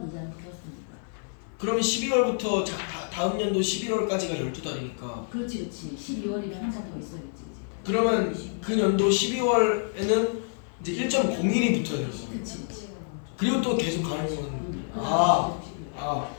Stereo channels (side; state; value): right; silent; 59 dB below the other